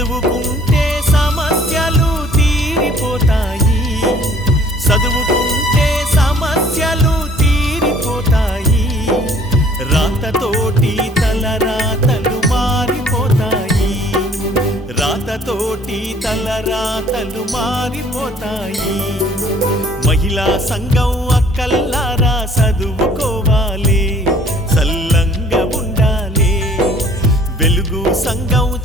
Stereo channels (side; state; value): both; normal; correlation 0.56